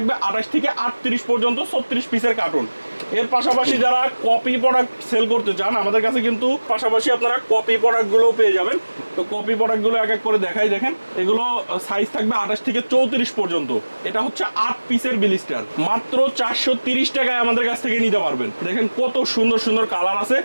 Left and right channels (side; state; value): both; inverted; correlation -1.00